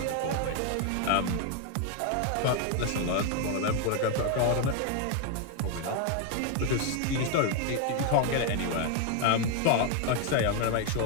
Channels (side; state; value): both; different; correlation 0.01